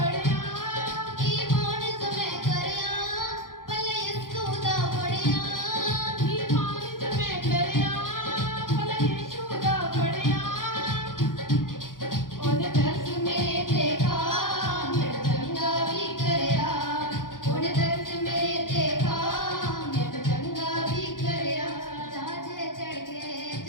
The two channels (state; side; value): late; right; 0.90 ms